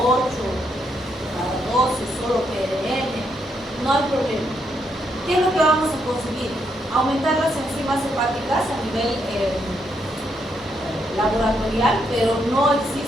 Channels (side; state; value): both; normal; correlation 0.77